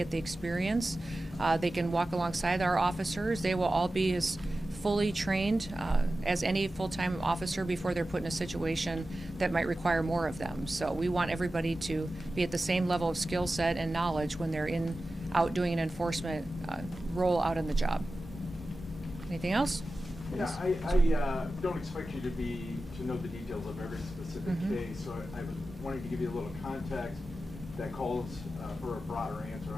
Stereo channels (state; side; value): normal; both; correlation 0.94